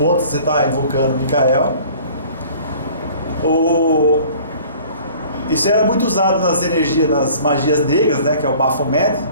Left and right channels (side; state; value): both; inverted; correlation -0.49